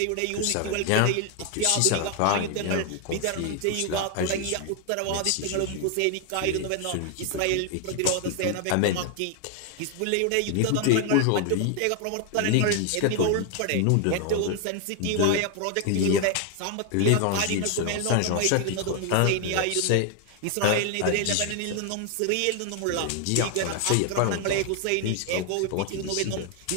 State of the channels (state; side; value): different; both; correlation 0.01